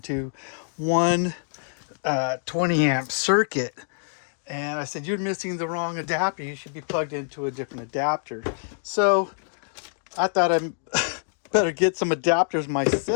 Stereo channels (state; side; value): silent; right; digital silence